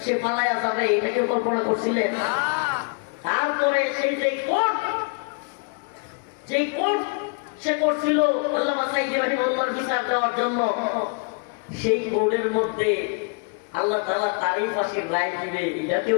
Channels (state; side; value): quieter; right; 35.5 dB